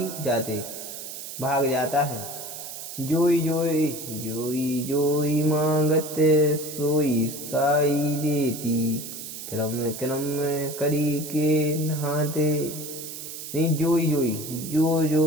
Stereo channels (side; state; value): right; noise; hiss, 10 dB below the sound